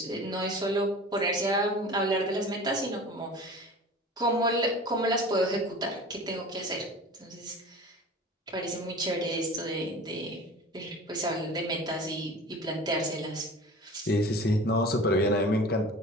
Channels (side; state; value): both; normal; correlation 0.39